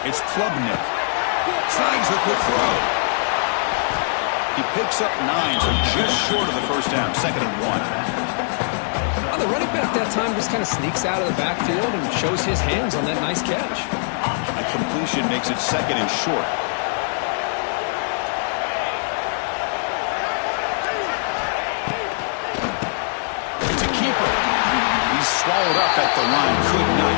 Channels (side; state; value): right; silent; digital silence